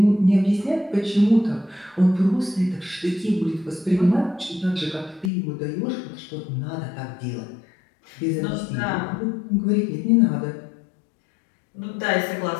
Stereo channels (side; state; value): right; drops out; at 5.3 s